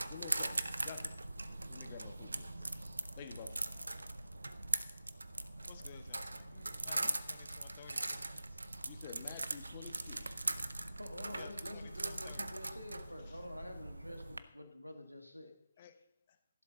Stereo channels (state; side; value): inverted; both; correlation -0.95